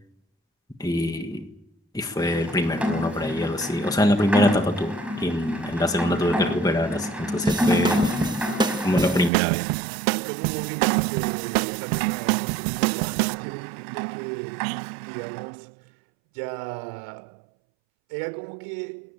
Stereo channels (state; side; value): drops out; left; at 9.3 s